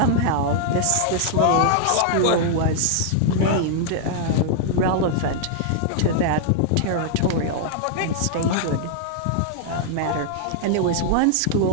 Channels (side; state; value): both; different; correlation -0.01